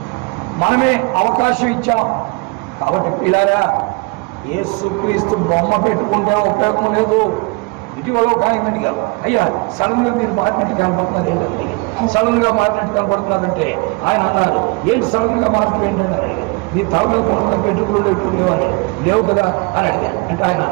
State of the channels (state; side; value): quieter; left; 28.7 dB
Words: మనమే అవకాశం ఇచ్చాం. కాబట్టి పిల్లారా, యేసుక్రీస్తు బొమ్మ పెట్టుకుంటే ఉపయోగం లేదు. ఇటీవల ఒక ఆయన అడిగారు, అయ్యా సడన్గా మీరు మారినట్టు కనపడుతున్నారు ఏంటంటే, సడన్గా మారినట్టు కనపడుతున్నారంటే ఆయన అన్నారు, ఏంటి సడన్గా మార్పు ఏంటంటే, మీ తల మీద కొత్తగా పెట్టుకులు లేకుండేవారు లేవు కదా అని అడిగారు. అంటే ఆయన